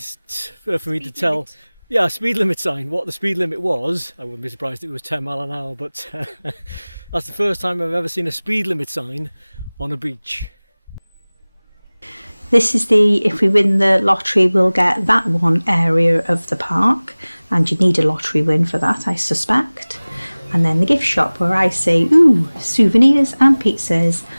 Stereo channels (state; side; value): inverted; both; correlation -1.00